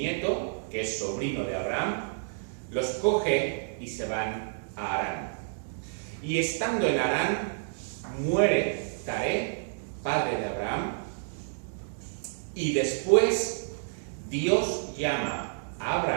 que es sobrino de Abraham, los coge y se van a Harán. Y estando en Harán, muere Taré, padre de Abraham, y después Dios llama a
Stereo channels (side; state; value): left; silent; digital silence